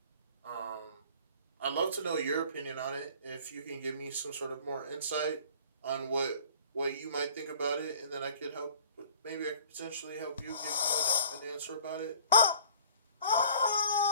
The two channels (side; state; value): both; inverted; correlation -0.50